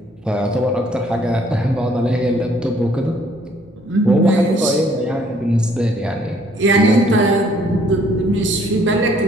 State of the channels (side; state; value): both; normal; correlation 0.62